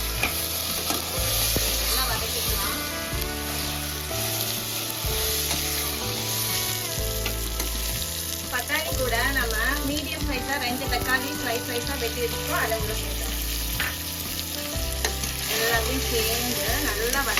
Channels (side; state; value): both; identical; correlation 1.00